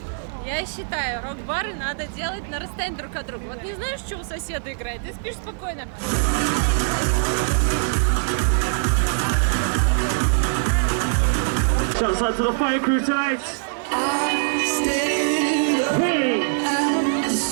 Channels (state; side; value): silent; left; digital silence